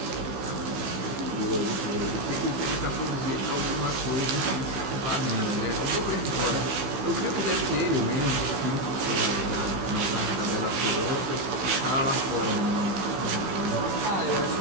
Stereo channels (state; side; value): late; left; 15 ms